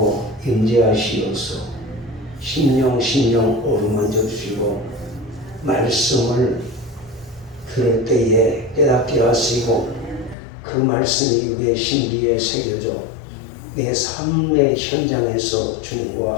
임재하시어서 심령 어루만져 주시고 말씀을 들을 때에 깨닫게 하시고 그 말씀이 우리의 심기에 새겨져 내 삶의 현장에서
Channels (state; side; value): drops out; right; at 10.4 s